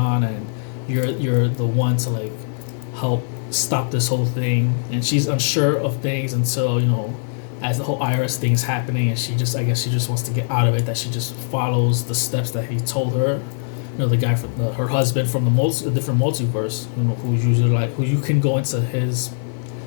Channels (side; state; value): right; silent; digital silence